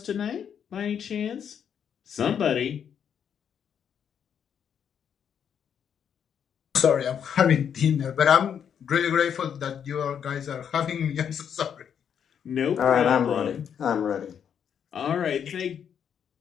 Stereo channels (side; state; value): right; quieter; 8.2 dB